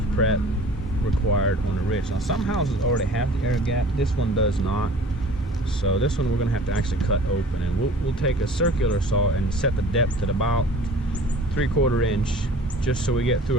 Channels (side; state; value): both; normal; correlation 0.46